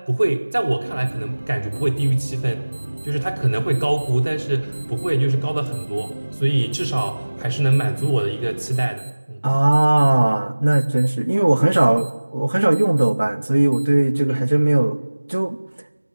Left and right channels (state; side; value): inverted; both; correlation -1.00